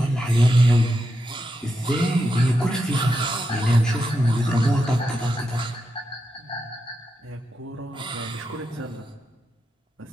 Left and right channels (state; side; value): normal; both; correlation 0.86